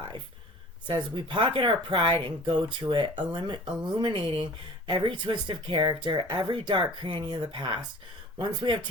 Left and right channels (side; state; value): both; normal; correlation 0.43